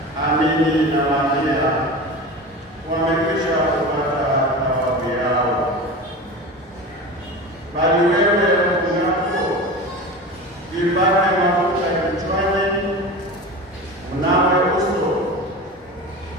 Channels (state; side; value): normal; both; correlation 0.30